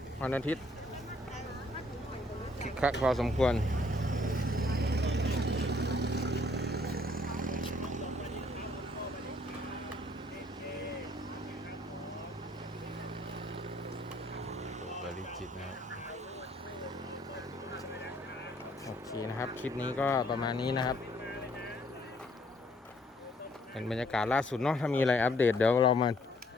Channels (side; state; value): both; normal; correlation 0.64